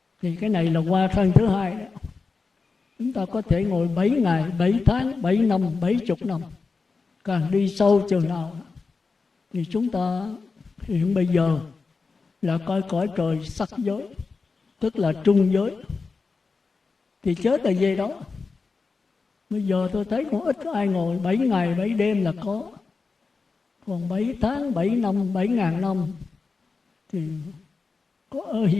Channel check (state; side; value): quieter; right; 4.4 dB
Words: Thì cái này là qua thân thứ 2 đó. Chúng ta có thể ngồi 7 ngày, 7 tháng, 7 năm, 70 năm. Càng đi sâu chừng nào thì chúng ta hiện bây giờ là coi cõi trời sắc giới, tức là trung giới. Thì chết là về đó. Bây giờ tôi thấy cũng ít ai ngồi 7 ngày 7 đêm là có. Còn 7 tháng, 7 năm, 7.000 năm thì có ở